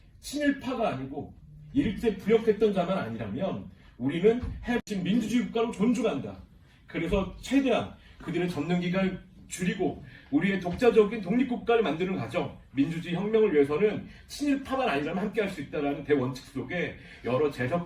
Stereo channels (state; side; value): identical; both; correlation 1.00